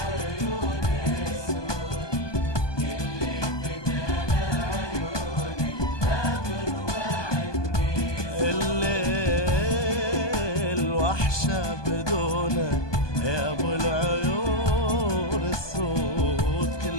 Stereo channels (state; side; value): late; right; 1.2 ms